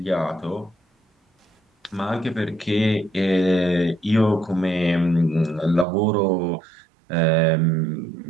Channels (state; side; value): drops out; left; at 5.9 s